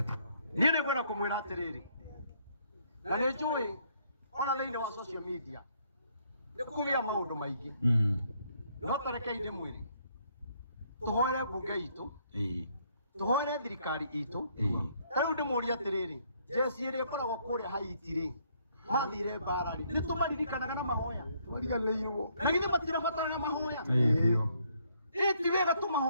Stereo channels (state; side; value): inverted; both; correlation -0.69